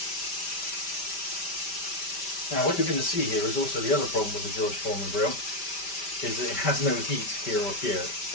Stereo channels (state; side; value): late; right; 5.1 ms